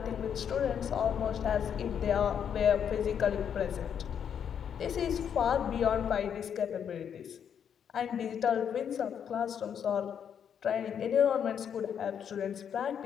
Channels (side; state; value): right; quieter; 8.2 dB